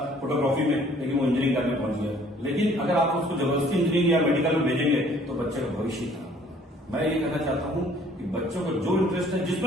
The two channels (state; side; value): normal; both; correlation 0.57